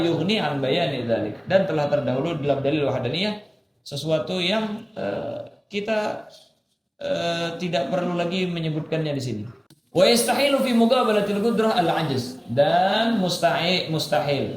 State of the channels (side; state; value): both; identical; correlation 1.00